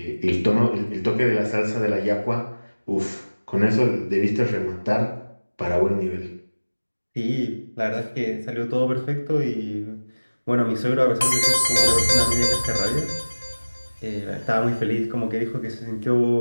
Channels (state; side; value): inverted; both; correlation -1.00